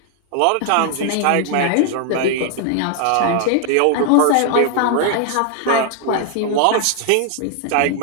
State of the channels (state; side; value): different; both; correlation 0.00